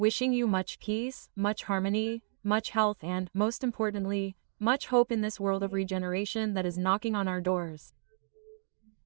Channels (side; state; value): left; silent; digital silence